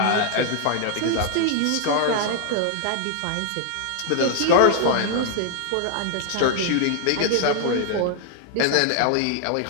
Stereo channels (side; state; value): both; different; correlation 0.00